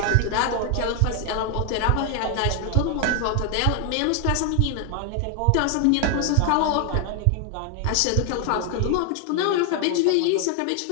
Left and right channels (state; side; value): different; both; correlation 0.00